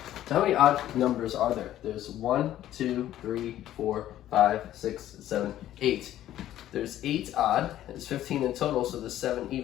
So how many odd numbers are there? There's 1, 2, 3, 4, 5, 6, 7, 8. There's 8 odd, there's 15 in total, so there's 7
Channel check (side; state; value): right; quieter; 12.8 dB